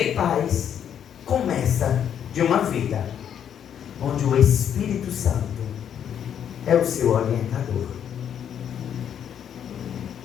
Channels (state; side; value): quieter; right; 9.0 dB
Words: em paz começa de uma vida onde o Espírito Santo é o seu orientador.